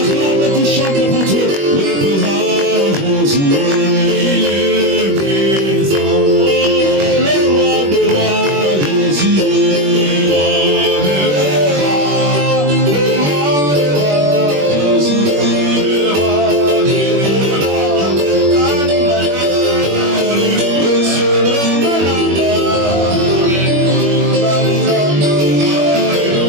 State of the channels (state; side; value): late; left; 21 ms